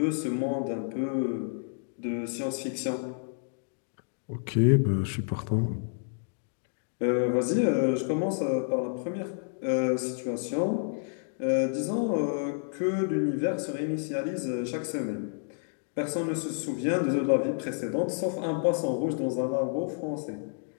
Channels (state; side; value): silent; right; digital silence